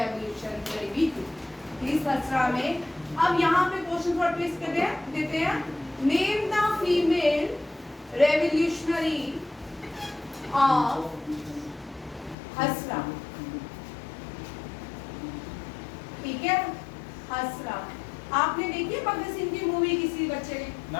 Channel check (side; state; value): right; drops out; at 12.4 s